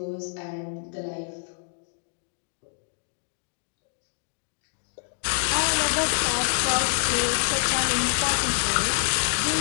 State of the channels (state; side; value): silent; right; digital silence